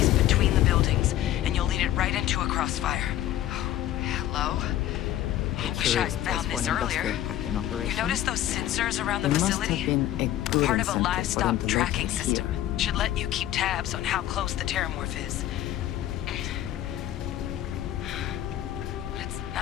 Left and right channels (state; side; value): quieter; right; 13.0 dB